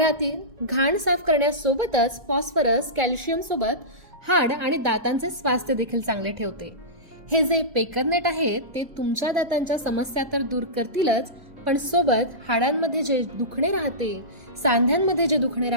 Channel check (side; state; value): left; late; 2.0 ms